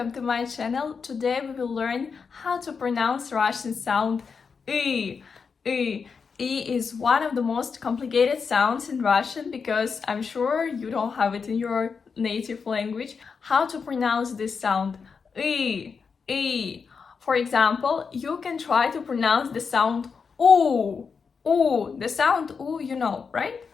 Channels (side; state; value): right; quieter; 5.6 dB